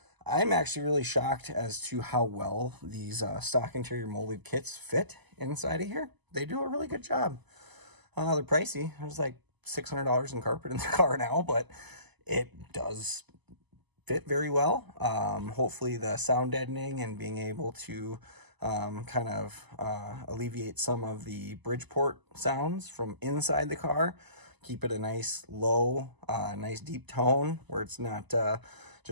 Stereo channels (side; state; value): left; late; 1.0 ms